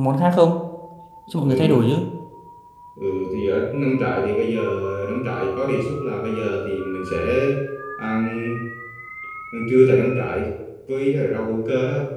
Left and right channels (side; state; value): both; identical; correlation 1.00